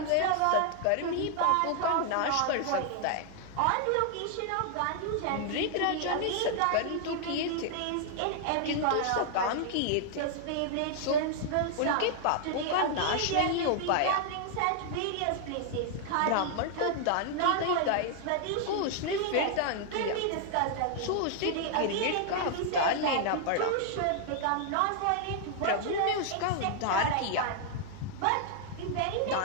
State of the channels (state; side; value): different; both; correlation 0.00